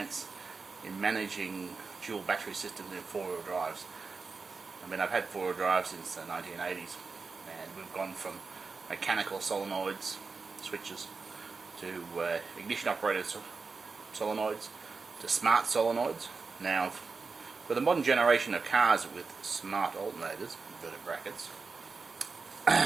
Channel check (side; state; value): left; quieter; 4.5 dB